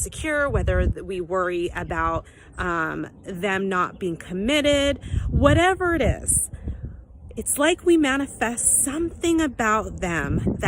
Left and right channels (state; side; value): identical; both; correlation 1.00